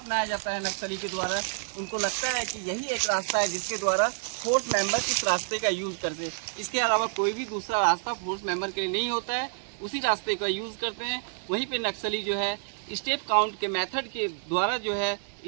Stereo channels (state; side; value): silent; left; 59 dB below the other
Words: जाता है नक्सली के द्वारा। उनको लगता है कि यही एक रास्ता है जिसके द्वारा फोर्स मेंबर इस रास्ते का यूज़ करते हैं। इसके अलावा कोई भी दूसरा रास्ता फोर्स मेंबर के लिए नहीं होता है, उसी रास्ते का यूज़ करते हैं। वहीं पे नक्सली जो है स्टेप काउंट के मेथड के द्वारा जो है